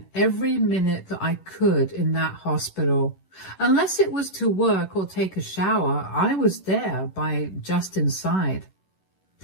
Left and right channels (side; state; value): right; late; 11 ms